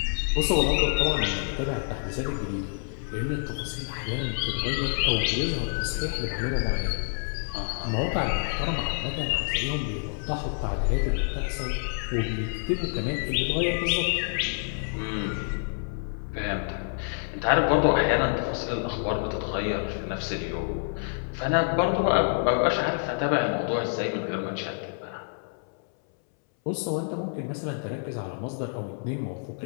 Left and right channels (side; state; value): right; silent; 60 dB below the other